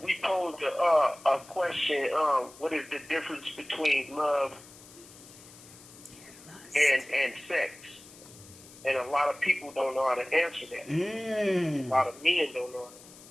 we posed a question. What is the difference between love and sex? And a lot of people don't know how to answer that. A lot of men don't know.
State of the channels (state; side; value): noise; left; hiss, 20 dB below the sound